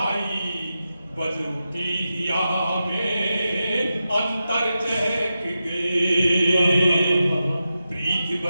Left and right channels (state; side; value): inverted; both; correlation -0.90